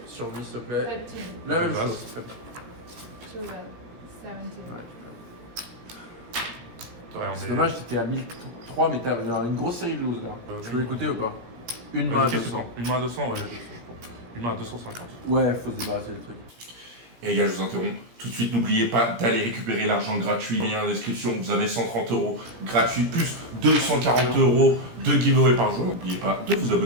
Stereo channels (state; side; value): late; left; 17 ms